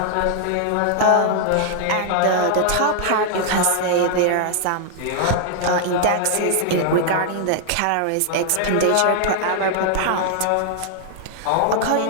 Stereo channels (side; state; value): both; different; correlation 0.00